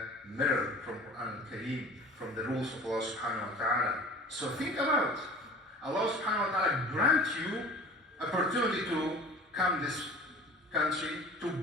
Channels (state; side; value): normal; both; correlation 0.42